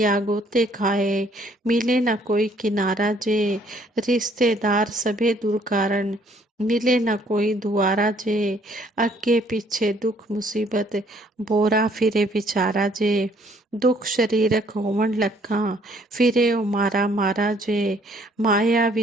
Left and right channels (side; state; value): both; normal; correlation 0.63